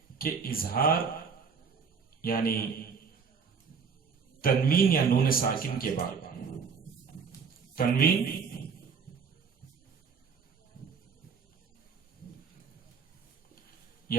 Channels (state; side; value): quieter; left; 5.8 dB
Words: کہ اظہار یعنی تنوین یا نون ساکن کے بعد تنوین